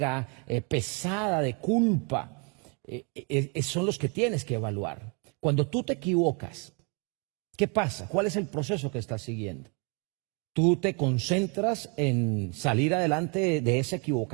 pesada de culpa, son los que tienes que evaluar. Cuando tú te equivocas, ¿qué pasa? ¿Cuál es el proceso que estás siguiendo? ¿Tú te concentras en salir adelante de esa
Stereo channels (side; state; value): left; quieter; 34.9 dB